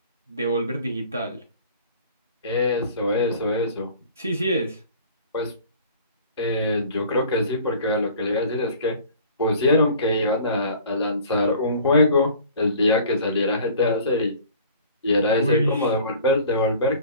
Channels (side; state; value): both; inverted; correlation -0.47